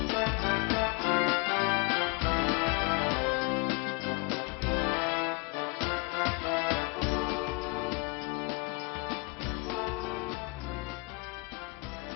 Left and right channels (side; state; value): right; quieter; 29.5 dB